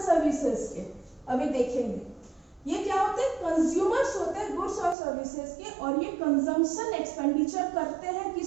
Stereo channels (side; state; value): left; drops out; at 5.0 s